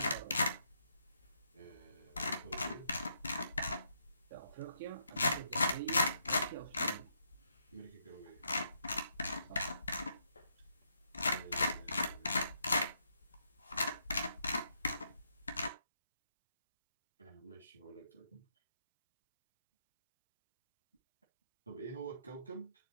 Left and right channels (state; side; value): inverted; both; correlation -0.77